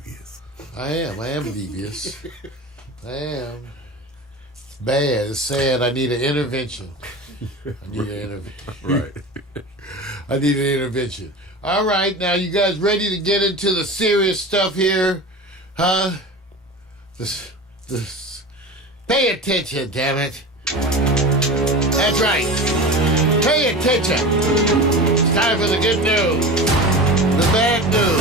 I am devious. I am. bad. It's sad. I need an intervention. Right. I need an intervention. All right, now you guys ready to get into the serious stuff here? Huh? This. Pay attention, damn it. That's right. Pay attention. It's time for the good news, the bad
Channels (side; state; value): both; normal; correlation 0.31